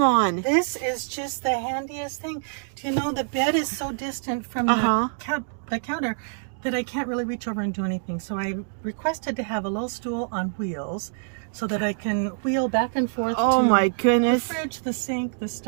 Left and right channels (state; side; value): silent; left; digital silence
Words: on. This is just the handiest thing. Do you know, the bed is so distant from the counter that I can't really reach over and do anything. So I requested to have a little stool on wheels so that I can wheel back and forth to my goodness. The fridge, the sink, the